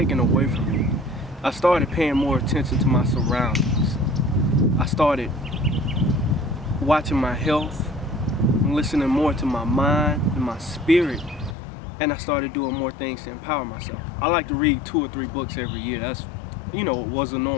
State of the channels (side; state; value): right; drops out; at 11.6 s